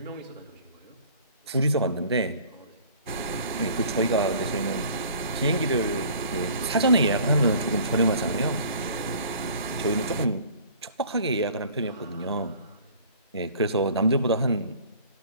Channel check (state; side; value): inverted; both; correlation -0.50